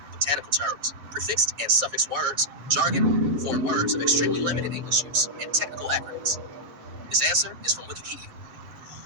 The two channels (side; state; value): left; late; 7.1 ms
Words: botanical terms, prefixed and suffix words, jargon, foreign words of extremely limited English use, and technical acronyms. This answer is from Wikipedia.